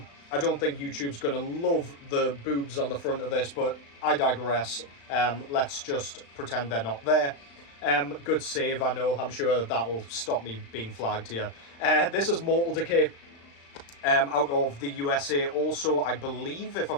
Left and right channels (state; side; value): late; right; 35 ms